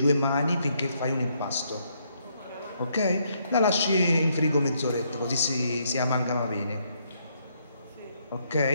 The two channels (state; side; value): inverted; both; correlation -0.73